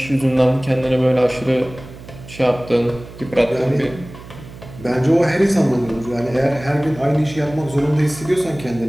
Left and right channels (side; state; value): right; noise; hum, 16 dB below the sound